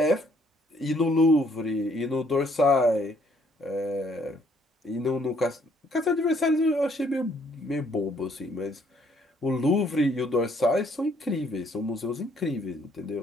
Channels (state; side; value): normal; both; correlation 0.66